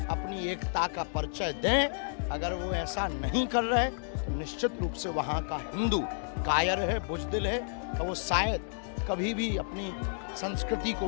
अपनी एकता का परिचय दें। अगर वो ऐसा नहीं कर रहे तो निश्चित रूप से वहाँ का हिंदू कायर है, बुजदिल है, तो वो शायद कभी भी अपनी संस्कृति को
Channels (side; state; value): right; silent; digital silence